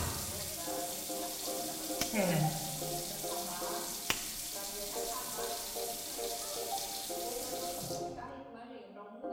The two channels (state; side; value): identical; both; correlation 1.00